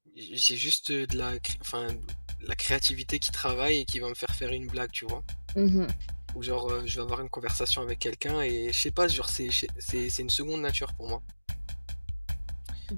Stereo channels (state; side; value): inverted; both; correlation -1.00